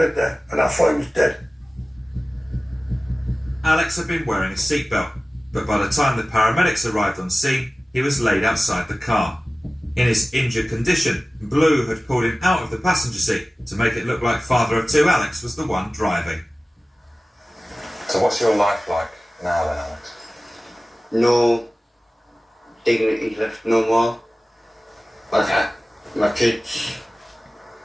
there, and I thought he was dead. Alex had been wearing a seatbelt, but by the time the paramedics arrived on scene, he was laid outside the car. In his injured condition, Blue had pulled him out of the passenger seat to make it look like father of two Alex was the one driving. So what's your life like now then, Alex? No dignity left no more. Like my kids,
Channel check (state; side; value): normal; both; correlation 0.97